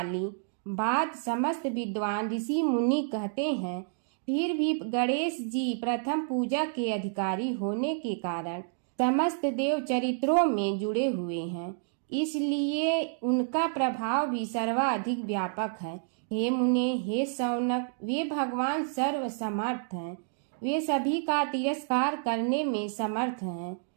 बात समस्त विद्वान ऋषि मुनि कहते हैं। फिर भी गणेश जी प्रथम पूजा के अधिकारी होने के कारण समस्त देव चरित्रों में जुड़े हुए हैं, इसलिए उनका प्रभाव भी सर्वाधिक व्यापक है। हे मुने, हे शौनक, वे भगवान सर्व समर्थ हैं। वे सभी का तिरस्कार करने में समर्थ हैं,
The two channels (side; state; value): left; silent; digital silence